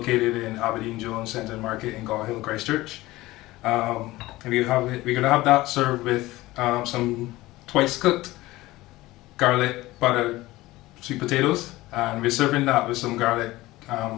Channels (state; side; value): quieter; right; 18.5 dB